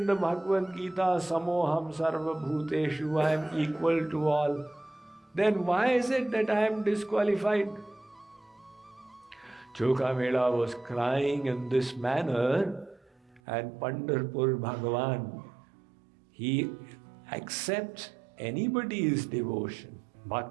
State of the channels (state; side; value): drops out; left; at 13.4 s